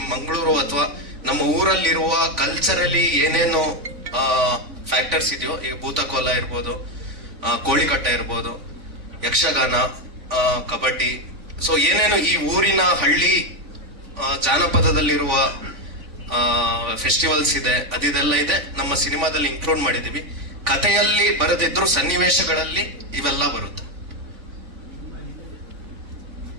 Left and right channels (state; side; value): late; left; 3.5 ms